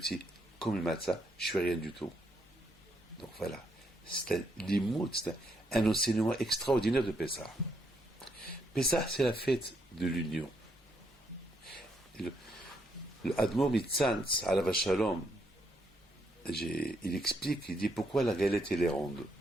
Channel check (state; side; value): normal; both; correlation 0.75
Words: comme le matzah, je suis rien du tout. Donc voilà, c'est un enseignement extraordinaire de Pessah. Pessah, c'est la fête de l'union. Le Admor Mitzantz, Alav Shalom, il explique, il dit pourquoi la galette elle est ronde.